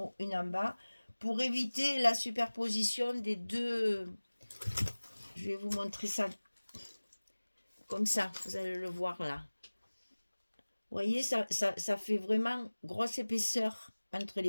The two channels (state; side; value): inverted; both; correlation -1.00